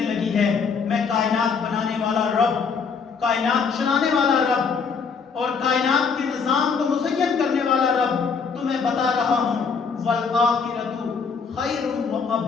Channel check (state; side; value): quieter; right; 5.6 dB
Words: لگی ہے۔ میں کائنات بنانے والا رب، کائنات چلانے والا رب اور کائنات کے نظام کو مزین کرنے والا رب تمہیں بتا رہا ہوں، والآخرۃ خیر